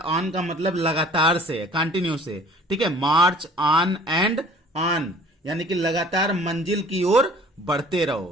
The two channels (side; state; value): both; normal; correlation 0.51